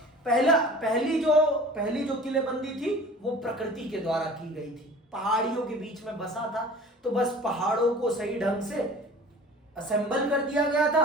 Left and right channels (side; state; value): both; normal; correlation 0.43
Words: पहली जो किलेबंदी थी वो प्रकृति के द्वारा की गई थी। पहाड़ियों के बीच में बसा था, तो बस पहाड़ों को सही ढंग से असेंबल कर दिया गया था